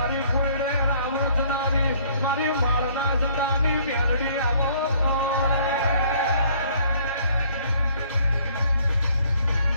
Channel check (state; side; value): inverted; both; correlation -0.60